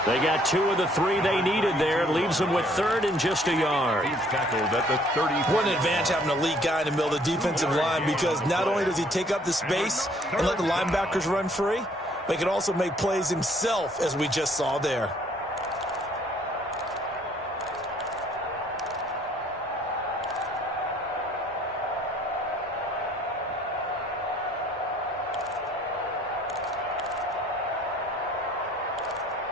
They got 2 of the 3 they needed there. It leaves them with 3rd and just a yard. He's tackled at the 30. What an advantage having an elite guy in the middle of the defensive line, because not only does he take up the space and let the linebackers run free, but he can also make plays himself, as we just saw there.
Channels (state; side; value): normal; both; correlation 0.61